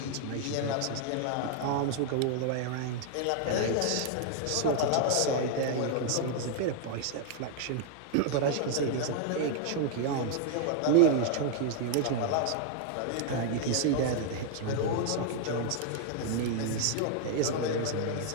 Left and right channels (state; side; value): different; both; correlation 0.00